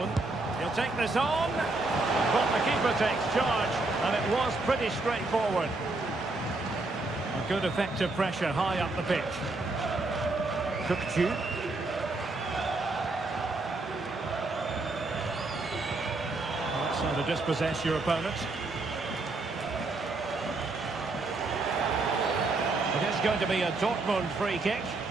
He'll take this on, but the keeper takes charge, and it was pretty straightforward. A good effective pressure high up the pitch. Kukçu. That's how to dispossess your opponent. It is going to be a Dortmund free kick.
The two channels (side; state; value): left; quieter; 3.2 dB